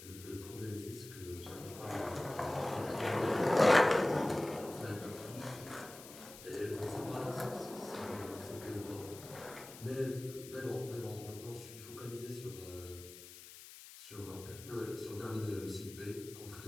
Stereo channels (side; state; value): left; noise; hiss, 15 dB below the sound